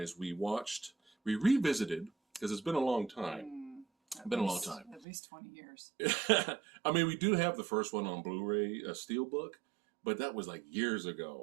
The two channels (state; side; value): drops out; left; at 5.1 s